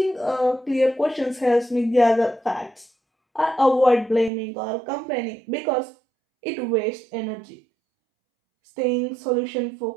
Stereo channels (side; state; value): left; drops out; at 4.3 s